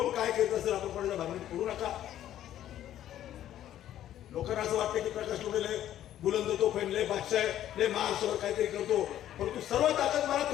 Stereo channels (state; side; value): quieter; right; 11.9 dB